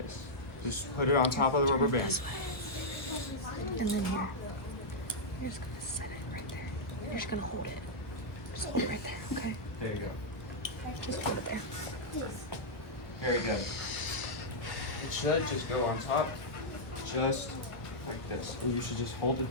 Just put it on top of the rubber band. And then here. You're just gonna set it right there. You're just gonna hold it. Just hold it right there, okay? There you go. Just hold it there. Very good. It should just go on top, just like this. And you should just hold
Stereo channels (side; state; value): right; late; 1.0 ms